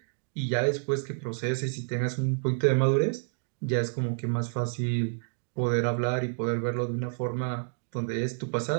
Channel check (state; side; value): silent; left; digital silence